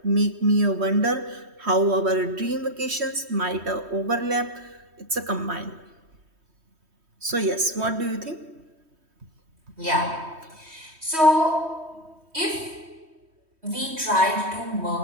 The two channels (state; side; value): late; left; 3.1 ms